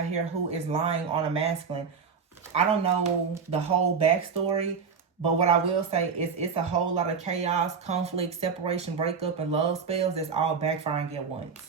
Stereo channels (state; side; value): quieter; left; 5.9 dB